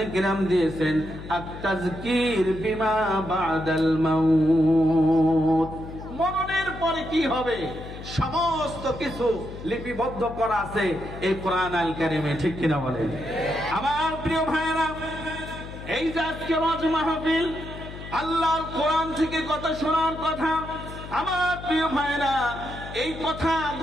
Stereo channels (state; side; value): noise; left; hum, 12 dB below the sound